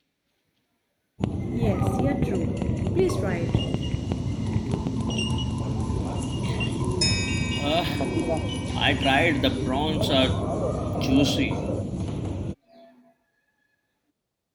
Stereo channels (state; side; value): identical; both; correlation 1.00